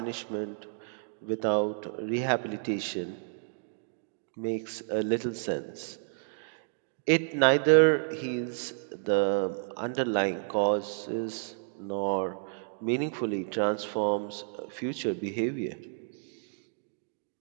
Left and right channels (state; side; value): silent; left; digital silence